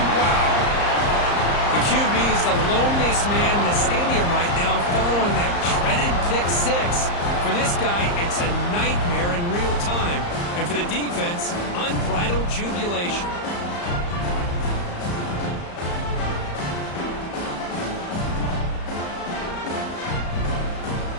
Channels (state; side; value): late; right; 34 ms